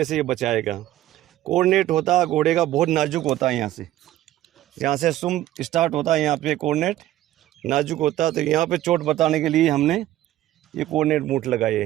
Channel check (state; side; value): quieter; left; 14.1 dB